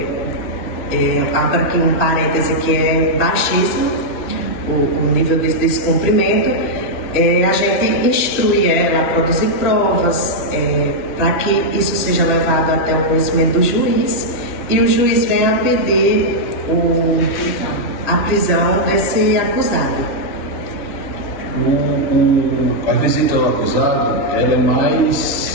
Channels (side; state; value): right; late; 2.9 ms